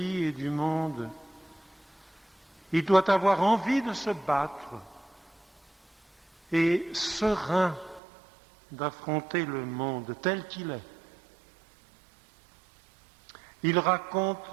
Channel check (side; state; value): left; drops out; at 8.0 s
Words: et du monde. Il doit avoir envie de se battre et serein d'affronter le monde tel qu'il est. Il raconte